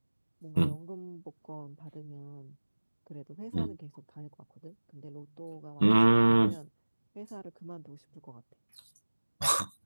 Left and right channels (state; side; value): inverted; both; correlation -1.00